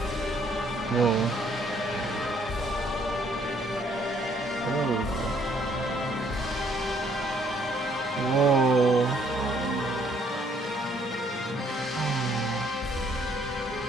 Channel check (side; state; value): both; normal; correlation 0.65